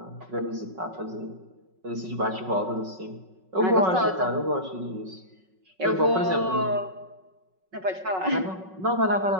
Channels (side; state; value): left; late; 5.4 ms